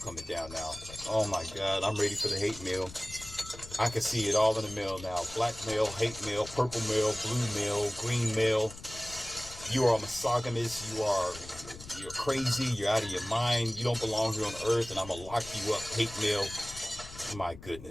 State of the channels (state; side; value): noise; left; rumble, 16 dB below the sound